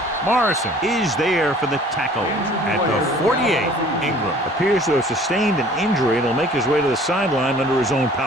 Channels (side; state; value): both; normal; correlation 0.51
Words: Morrison is there for the tackle at the 48. Ingram appears to have sustained an injury and will make his way to the sideline under his own